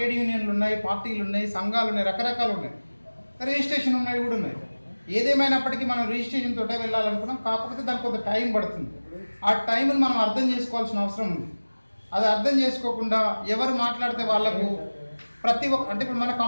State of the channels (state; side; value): inverted; both; correlation -1.00